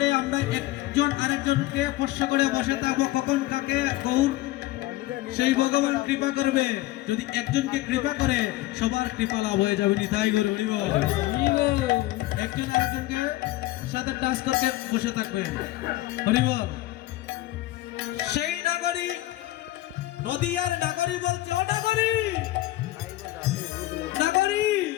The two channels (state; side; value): quieter; right; 17.1 dB